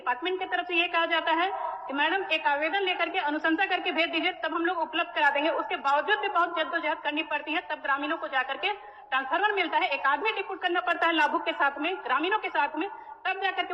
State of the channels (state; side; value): identical; both; correlation 1.00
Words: की तरफ से ये कहा जाता है कि मैडम एक आवेदन लेकर के अनुशंसा करके भेज दीजिए, तब हम लोग उपलब्ध करा देंगे। उसके बावजूद भी बहुत जद्दोजहद करनी पड़ती है, तब ग्रामीणों को जाकर के ट्रांसफार्मर मिलता है। एक आदमी डिप्यूट करना पड़ता है लाभुक के साथ में, ग्रामीणों के साथ में, तब जाकर के